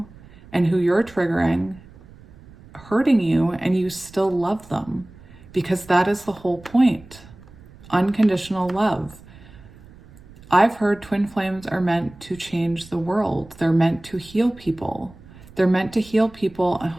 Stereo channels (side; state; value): right; noise; rumble, 22 dB below the sound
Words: and who you're triggering, hurting you, and you still love them, because that is the whole point. Unconditional love. I've heard twin flames are meant to change the world. They're meant to heal people. They're meant to heal people.